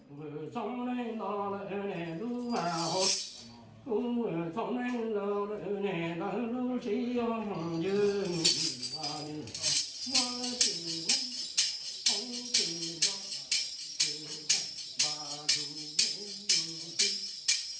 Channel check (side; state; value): both; identical; correlation 1.00